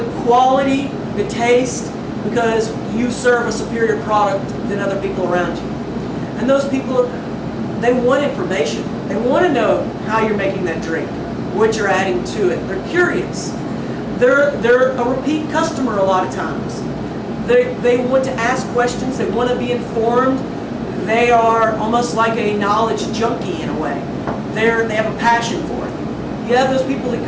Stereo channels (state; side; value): identical; both; correlation 1.00